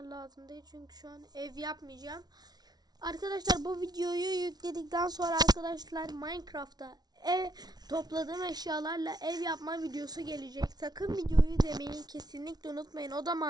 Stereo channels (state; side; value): late; left; 0.19 ms